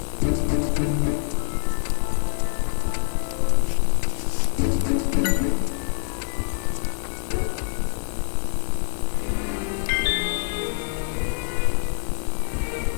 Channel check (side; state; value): right; silent; 62 dB below the other